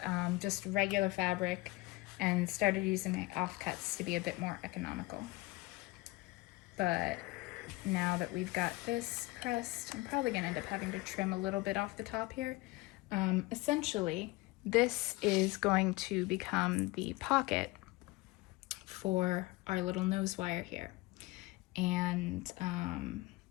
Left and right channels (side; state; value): right; quieter; 21.6 dB